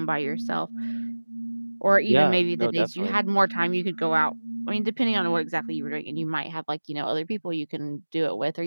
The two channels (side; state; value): both; inverted; correlation -1.00